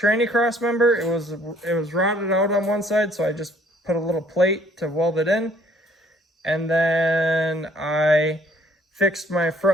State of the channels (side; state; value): both; normal; correlation 0.61